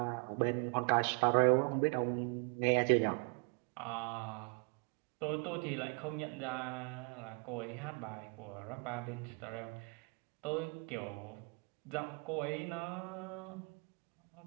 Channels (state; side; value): quieter; left; 34.8 dB